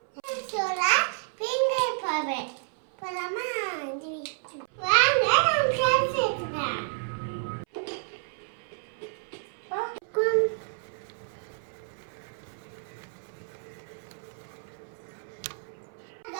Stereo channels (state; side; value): silent; left; 58 dB below the other